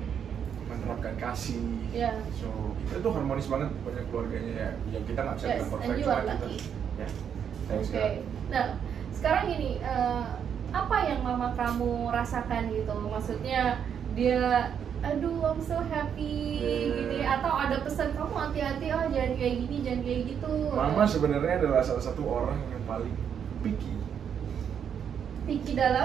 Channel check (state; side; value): quieter; left; 8.1 dB